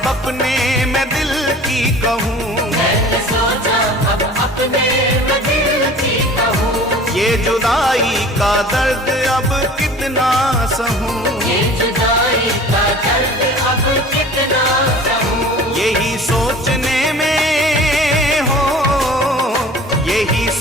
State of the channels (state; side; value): normal; both; correlation 0.43